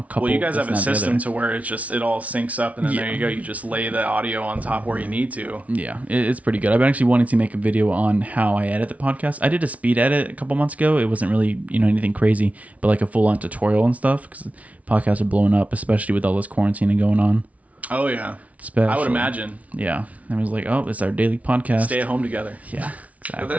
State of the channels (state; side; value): late; left; 0.068 ms